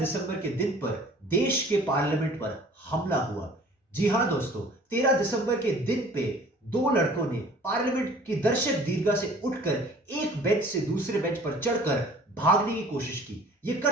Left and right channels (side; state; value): both; normal; correlation 0.49